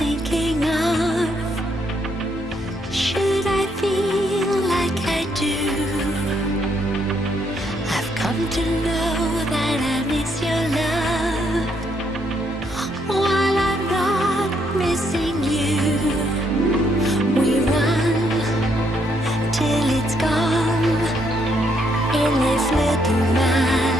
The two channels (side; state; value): both; normal; correlation 0.73